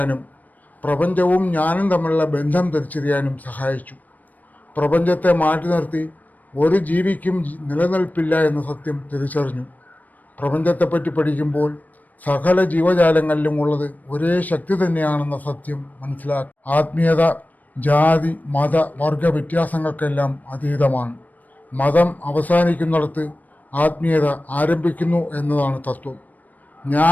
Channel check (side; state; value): right; late; 0.080 ms